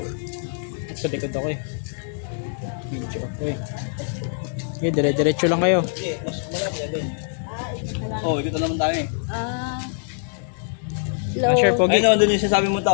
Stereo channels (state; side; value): silent; right; digital silence